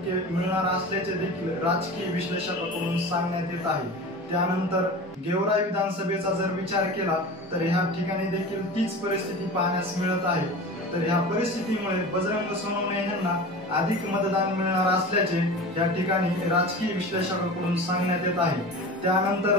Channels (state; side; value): normal; both; correlation 0.33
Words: मिळणार असल्याचे देखील राजकीय विश्लेषकांकडून सांगण्यात येत आहे। त्यानंतर गेवराई विधानसभेचा जर विचार केला तर ह्या ठिकाणी देखील तीच परिस्थिती पाहण्यास मिळत आहे। तर ह्या परिस्थितीमुळे बजरंग सोनवणे यांना अधिक मतदान मिळणार असल्याचे या ठिकाणी राजकीय विश्लेषकांकडून सांगण्यात येत आहे।